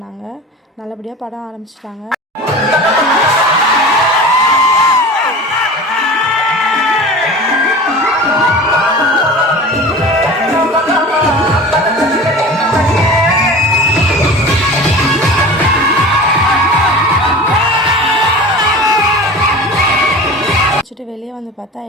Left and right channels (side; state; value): both; normal; correlation 0.36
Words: நல்லபடியாக படம் ஆரம்பிச்சிட்டாங்க. வெளியே வந்து பார்த்தா